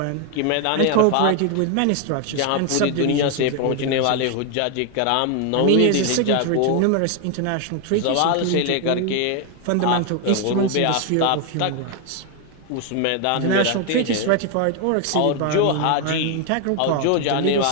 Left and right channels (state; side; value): different; both; correlation 0.01